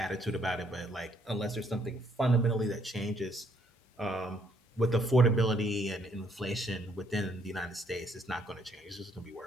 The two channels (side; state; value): both; normal; correlation 0.68